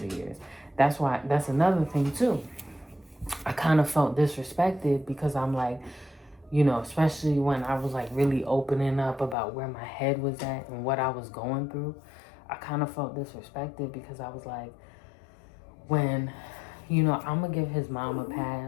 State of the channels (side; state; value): right; drops out; at 9.3 s